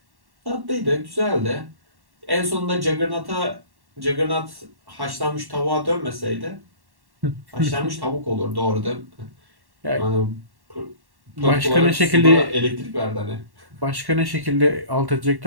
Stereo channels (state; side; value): late; left; 1.1 ms